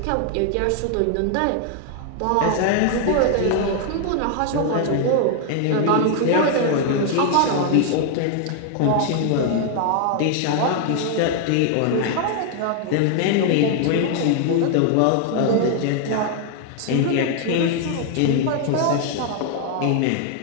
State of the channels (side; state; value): both; different; correlation 0.00